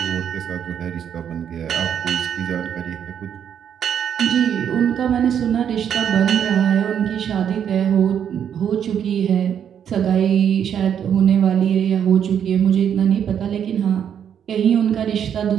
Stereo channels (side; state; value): left; quieter; 8.7 dB